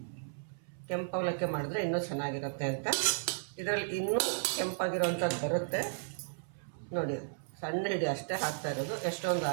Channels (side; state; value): left; silent; 55 dB below the other